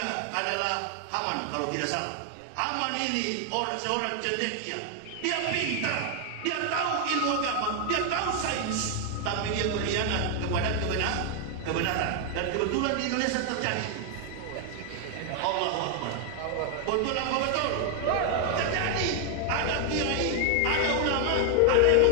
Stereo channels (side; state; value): both; different; correlation 0.00